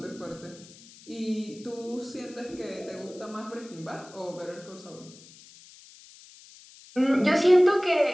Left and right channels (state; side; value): noise; left; hiss, 21 dB below the sound